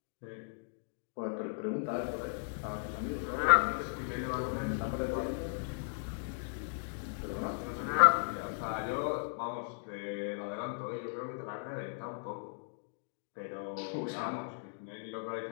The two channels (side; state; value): right; silent; digital silence